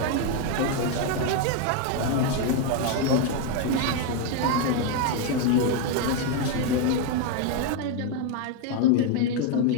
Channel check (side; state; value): both; different; correlation 0.01